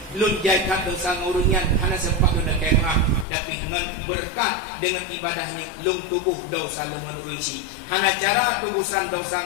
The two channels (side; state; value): right; drops out; at 3.2 s